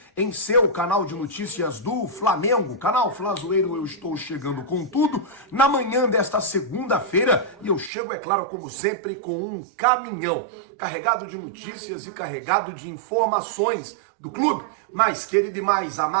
em seu canal de notícias do Flamengo, canal Flazoeiro. Eu estou chegando com tudo na manhã desta segunda-feira e eu chego, é claro, como sempre, com um caminhão carregado de notícias e carregado de informações do clube mais querido e mais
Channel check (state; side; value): drops out; left; at 7.9 s